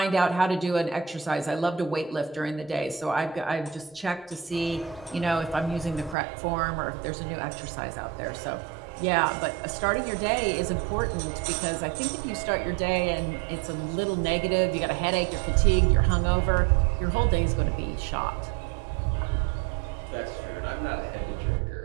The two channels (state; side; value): drops out; left; at 6.2 s